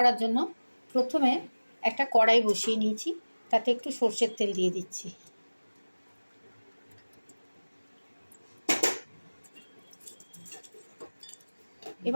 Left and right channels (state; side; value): inverted; both; correlation -1.00